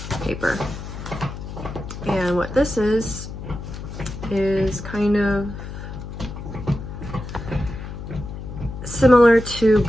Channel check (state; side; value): noise; left; hum, 9 dB below the sound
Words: paper. And what this is kind of similar to